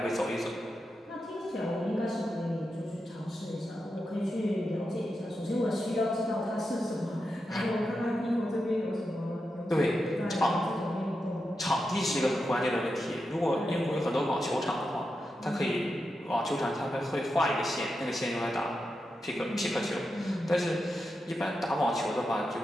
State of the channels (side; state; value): both; normal; correlation 0.88